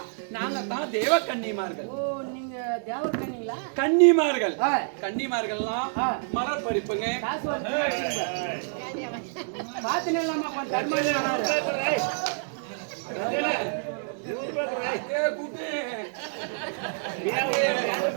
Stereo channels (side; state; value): left; silent; digital silence